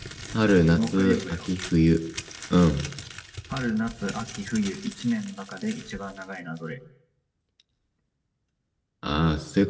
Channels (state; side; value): identical; both; correlation 1.00